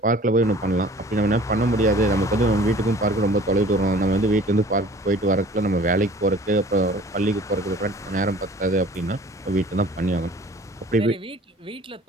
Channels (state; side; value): normal; both; correlation 0.48